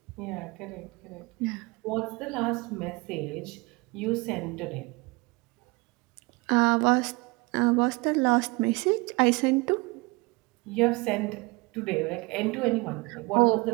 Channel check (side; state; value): left; quieter; 25.6 dB